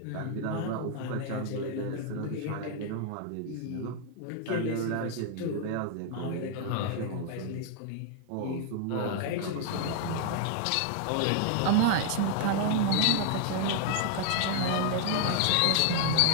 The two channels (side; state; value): both; different; correlation 0.00